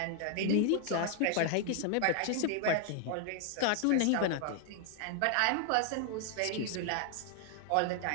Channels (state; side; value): different; both; correlation 0.00